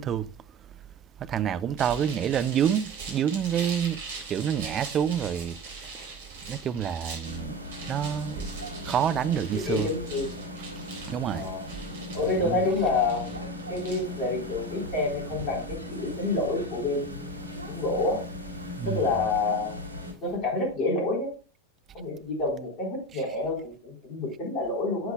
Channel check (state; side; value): normal; both; correlation 0.26